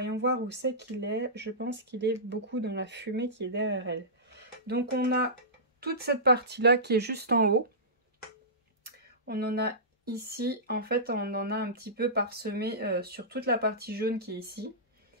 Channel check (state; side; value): normal; both; correlation -0.19